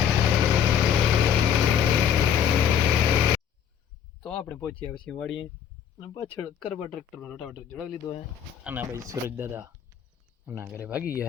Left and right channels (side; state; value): right; quieter; 8.6 dB